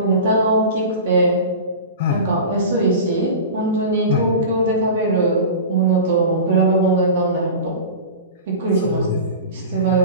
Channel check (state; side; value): inverted; both; correlation -0.31